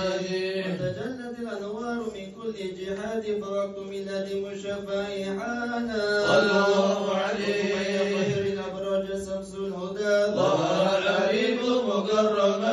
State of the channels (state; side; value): identical; both; correlation 1.00